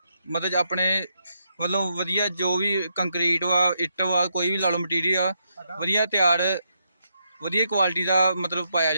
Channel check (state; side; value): inverted; both; correlation -0.79